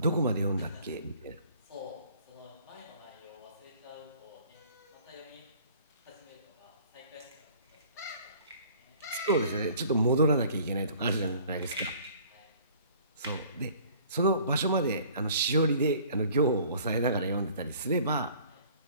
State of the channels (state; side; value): inverted; both; correlation -0.52